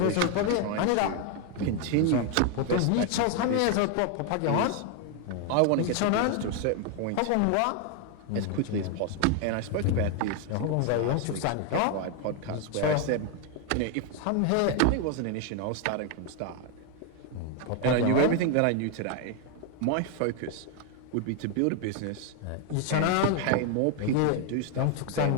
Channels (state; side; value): different; both; correlation 0.01